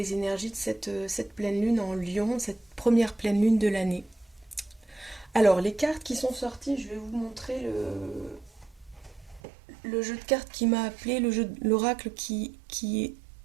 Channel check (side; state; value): left; drops out; at 9.4 s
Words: énergies de cette pleine lune en Lion, cette première pleine lune de l'année. Alors les cartes qui sont sorties, je vais vous montrer le jeu de cartes qui m'a appelé, le jeu de l'oracle qui